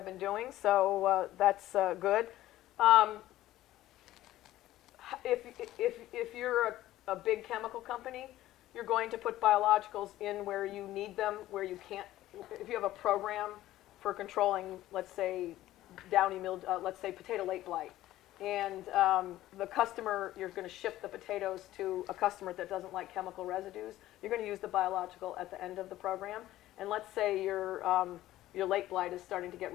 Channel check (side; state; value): right; quieter; 14.8 dB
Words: been doing, so that's good. If you're a big chemical company, you're going to put biologicals in where you need them, where you can't. If you have a program for controlling, let's say, downy mildew, let's say potato late blight, and the customer, you're going to ship the potatoes to a customer that doesn't like chemical residues, you're going to use the biological at the end of the program. And let's say your late blight is starting to get